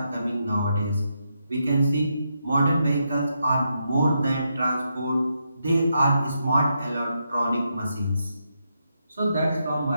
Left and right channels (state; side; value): inverted; both; correlation -0.82